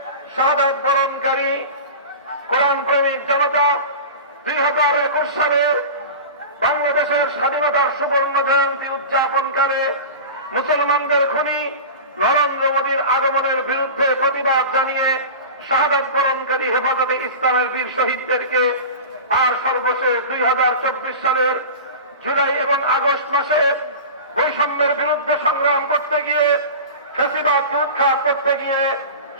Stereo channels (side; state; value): both; inverted; correlation -0.31